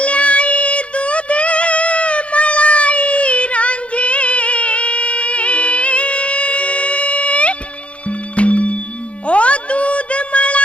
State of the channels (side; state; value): right; late; 0.061 ms